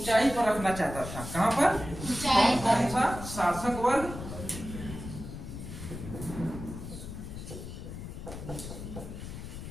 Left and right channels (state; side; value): noise; left; rumble, 9 dB below the sound